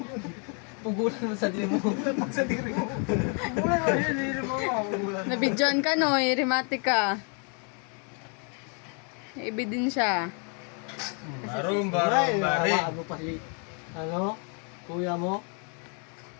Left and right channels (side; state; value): right; quieter; 38.9 dB